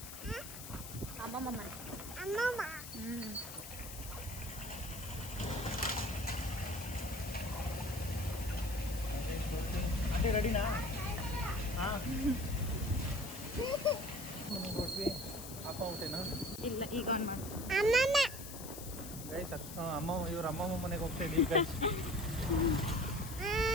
ಅಮ್ಮಮ್ಮ ಮನೆ. ಅದೇ ರೆಡಿನಾ? ಹಾಂ ಕೊಟ್ವಿ. ಅಪ್ಪ ಊಟೇನಾ? ಇಲ್ಲ, ಈಗ ಆನ್ ಮಾಡಿ. ಗೈಸ್ ಅಮ್ಮ, ಇವ್ರ ಅಮ್ಮಮ್ಮ ಮನೆಗೆ ಹೋಗ್ತಾ ಇದ್ದೀವಿ ಗೈಸ್.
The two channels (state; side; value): noise; left; hiss, 11 dB below the sound